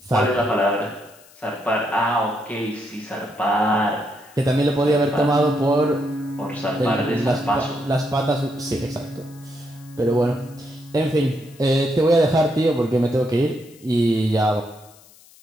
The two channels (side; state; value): left; noise; hiss, 25 dB below the sound